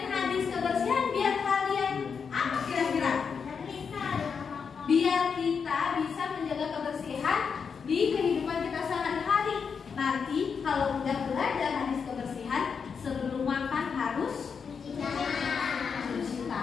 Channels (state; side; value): quieter; right; 6.1 dB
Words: hadis kebersihan biar kalian apa kira-kira? Biar kita bisa menjaga kebersihan di kehidupan kita sehari-hari. Nanti kalau udah belajar hadis kebersihan, sebelum makan harus cuci